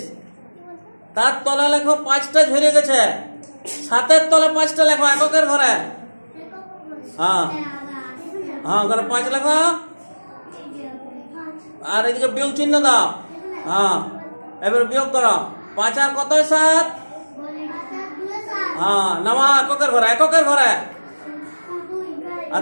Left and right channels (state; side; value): inverted; both; correlation -1.00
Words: তার তলে লেখো 5টা ঝরে গেছে। 7-এর তলে 5টা লেখো এককের ঘরে। হ্যাঁ হ্যাঁ, ওখানে 5 লেখো। আর এদিকে বিয়োগ চিহ্ন দাও। হ্যাঁ, এবার বিয়োগ করো। 5 আর কত? 7। হ্যাঁ, নামা এককের ঘরে, এককের ঘরে।